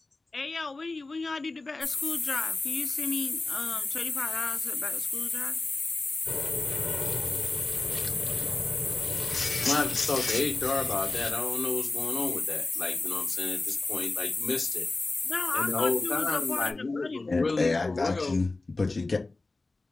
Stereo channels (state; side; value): quieter; right; 3.3 dB